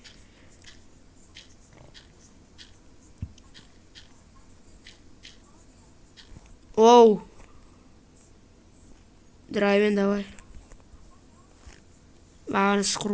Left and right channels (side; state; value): both; identical; correlation 1.00